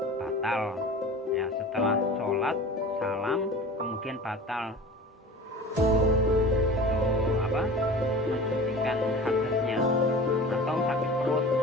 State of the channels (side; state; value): both; normal; correlation 0.37